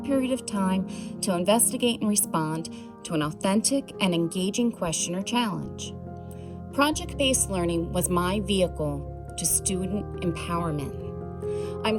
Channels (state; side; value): identical; both; correlation 1.00